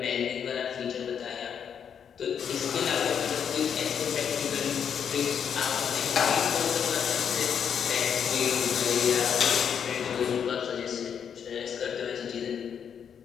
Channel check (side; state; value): right; quieter; 7.8 dB